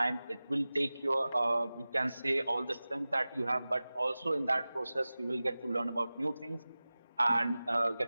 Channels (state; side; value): inverted; both; correlation -0.97